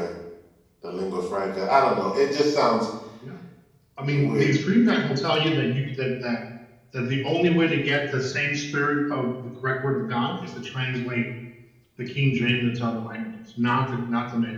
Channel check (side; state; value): both; identical; correlation 1.00